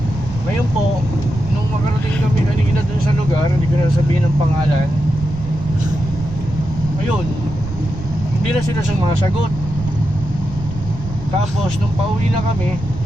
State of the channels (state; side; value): noise; right; rumble, 11 dB below the sound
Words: Ngayon po, nung makarating kami kanina dun sa lugar, hindi ko na sabihin ang pangalan. Ayun, hindi na sila sumasagot. Tapos nung pauwi na kami,